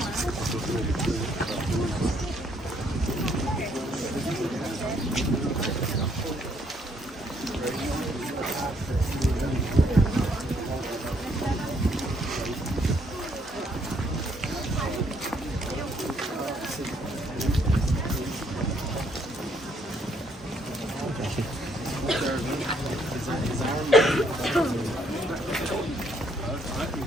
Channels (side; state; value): both; normal; correlation 0.69